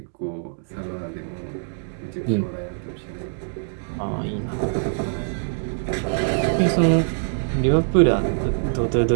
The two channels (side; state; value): left; silent; digital silence